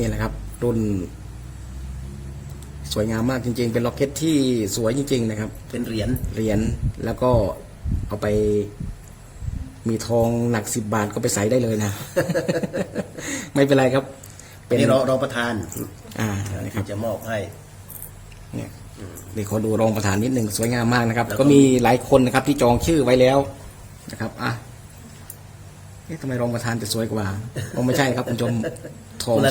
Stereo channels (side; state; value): both; identical; correlation 1.00